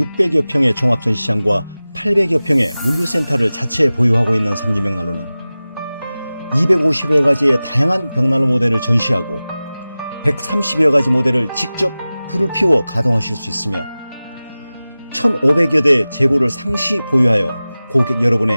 평의 종합전시장과 800여 평의 물류센터를 자체 보유하고 있는 삼진벽난로는 250여 가지의 다양한 벽난로 모델을 전시하고 130여 가지 모델을 직접 불을 피워 가동하실 수 있으며 1,500여 대의 재고를 상시 보유하여 고객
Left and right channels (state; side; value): inverted; both; correlation -0.97